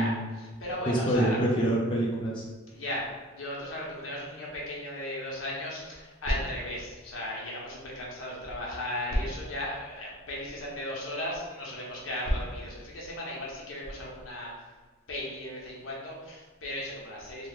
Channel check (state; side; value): normal; both; correlation 0.42